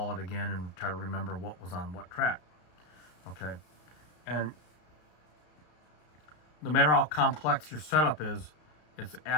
it again and try to remember what was on what track. Okay, and no matter how complex your setup is, it's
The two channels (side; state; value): right; late; 33 ms